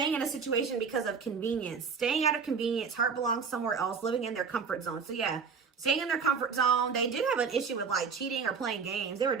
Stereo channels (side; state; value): left; quieter; 5.7 dB